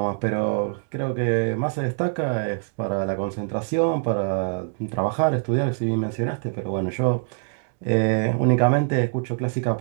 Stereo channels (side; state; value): left; silent; digital silence